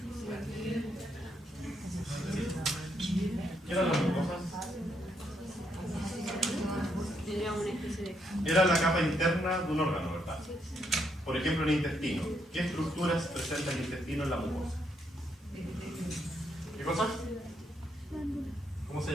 ¿Qué eran las mucosas? Era la capa interna de un órgano, ¿verdad? Por ejemplo, el intestino. ¿Qué estructuras presenta el intestino en la mucosa? ¿Qué cosas? ¿Cómo se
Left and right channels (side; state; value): both; normal; correlation 0.76